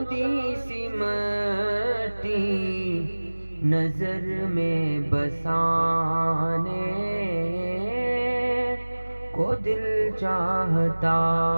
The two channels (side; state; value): both; inverted; correlation -1.00